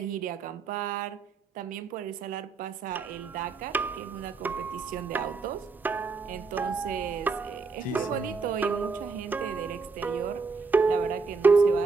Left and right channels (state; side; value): quieter; left; 4.6 dB